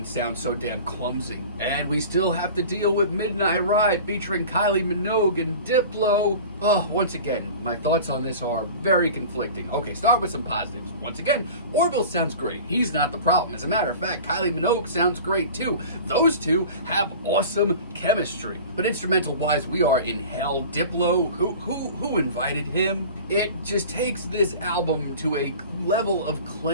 sound so damn clumsy. And we still have to deal with Midnight Ride featuring Kylie Minogue and Diplo. Oh, once again, my thoughts on this are very conflicting. Okay, start with some positives. Once again, Orville sounds great. He's not the problem. As a matter of fact, Kylie Minogue sounds great too. Those two have awesome chemistry. But instrumental-wise, we are in hell. Diplo, who invited him? It just takes this album to a level of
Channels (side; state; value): both; inverted; correlation -0.38